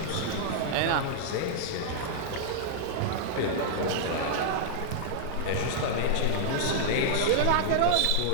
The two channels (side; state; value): both; different; correlation -0.01